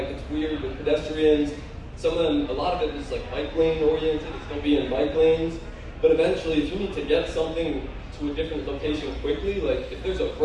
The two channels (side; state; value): both; identical; correlation 1.00